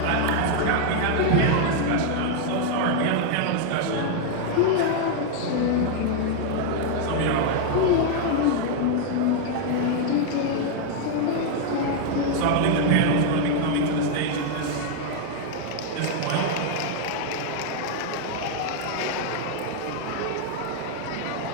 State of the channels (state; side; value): different; both; correlation 0.00